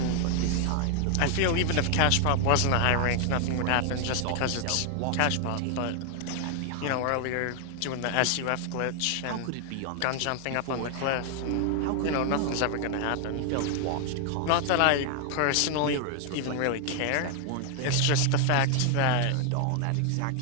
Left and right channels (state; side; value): different; both; correlation 0.00